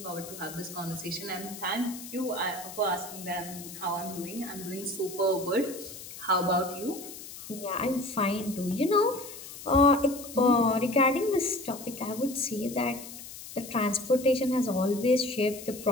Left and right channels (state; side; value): noise; left; hiss, 13 dB below the sound